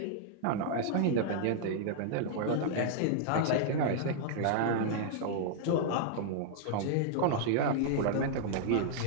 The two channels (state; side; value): different; both; correlation -0.01